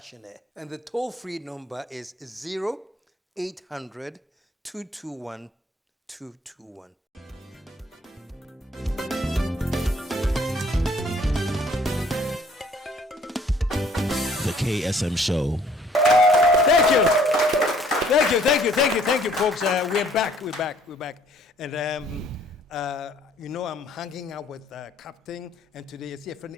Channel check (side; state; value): both; normal; correlation 0.59